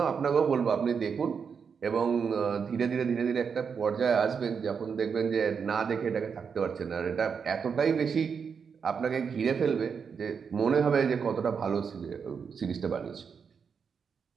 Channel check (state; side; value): quieter; left; 6.3 dB